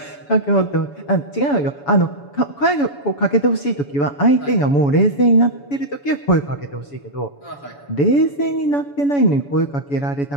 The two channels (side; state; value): right; late; 7.0 ms